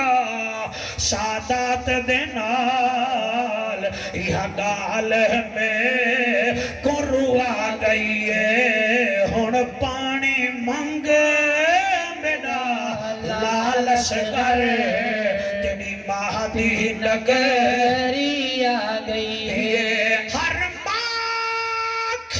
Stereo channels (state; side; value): identical; both; correlation 1.00